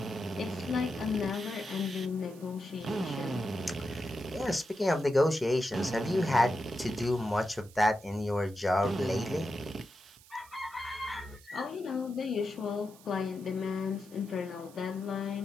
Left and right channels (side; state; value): right; noise; hiss, 23 dB below the sound